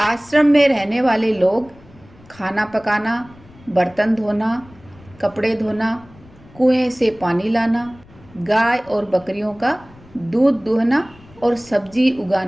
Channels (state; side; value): noise; left; rumble, 25 dB below the sound